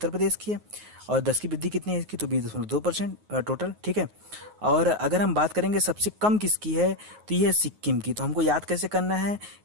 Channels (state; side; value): late; left; 9.5 ms